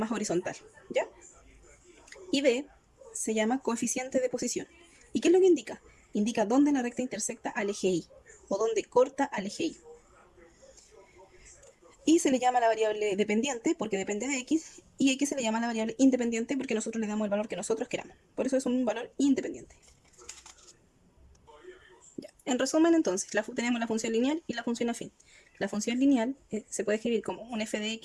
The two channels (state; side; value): identical; both; correlation 1.00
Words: horizontal, ¿ya? Y B se llama coeficiente de posición. ¿Y qué es lo que indica? Indica dónde la recta intersecta al eje Y o dónde corta al eje Y. Y se le llama la variable dependiente porque depende de x, y x se le llama la variable independiente porque nosotros le damos el valor que nosotros queramos. Por eso es un valor independiente. Ya. En resumen, entonces, tenemos la función lineal y la función afín. La función lineal se puede escribir como un f de